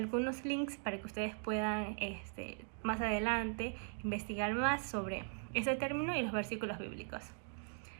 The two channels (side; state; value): left; silent; 51 dB below the other